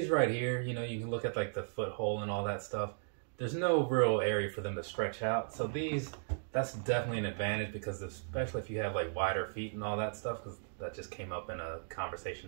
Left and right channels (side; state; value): left; silent; digital silence